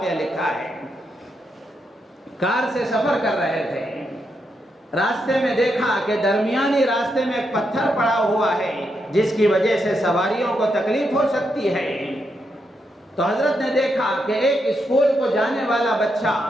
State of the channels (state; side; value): normal; both; correlation 0.82